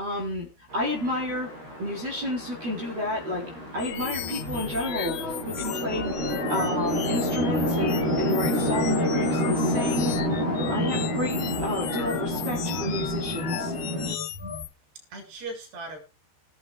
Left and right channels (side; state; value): left; late; 13 ms